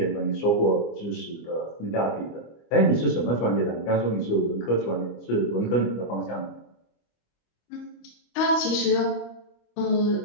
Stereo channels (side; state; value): right; late; 25 ms